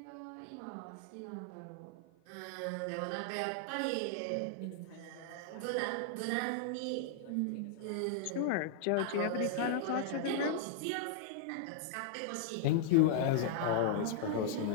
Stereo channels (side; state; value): both; different; correlation -0.01